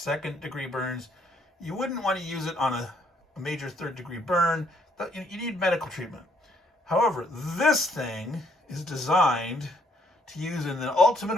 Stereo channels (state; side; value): normal; both; correlation 0.68